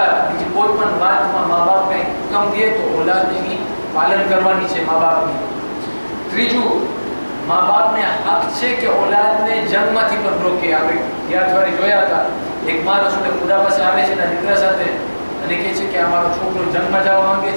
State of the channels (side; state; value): both; inverted; correlation -1.00